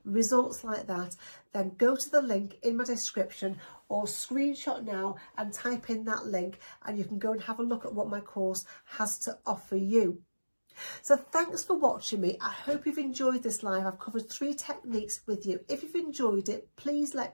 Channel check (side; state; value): both; inverted; correlation -1.00